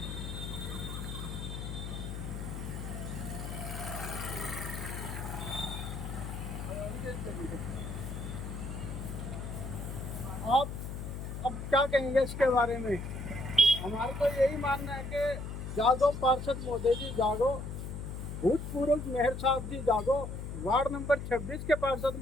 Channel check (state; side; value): noise; left; hum, 6 dB below the sound